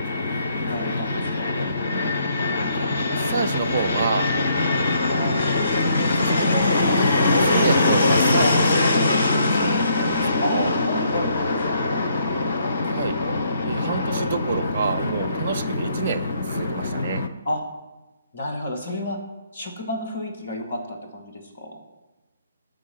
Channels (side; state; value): both; inverted; correlation -0.69